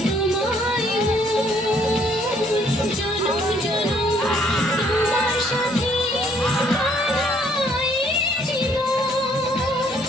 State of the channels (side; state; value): both; normal; correlation 0.64